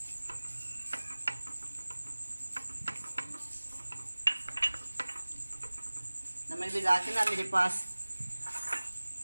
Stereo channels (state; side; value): inverted; both; correlation -1.00